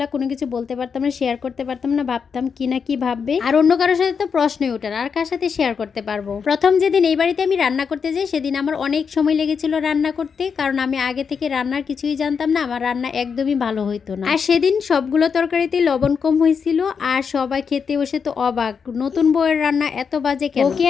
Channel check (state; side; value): quieter; right; 6.2 dB